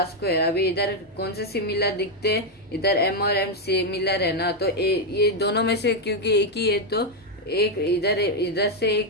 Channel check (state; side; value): normal; both; correlation 0.02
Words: स्क्वायर। अभी इधर कौन से सिमिलर दिखते हैं, इधर एम और एम सिमिलर है ना, तो ये दोनों में से क्योंकि एक ही है तो एक इधर से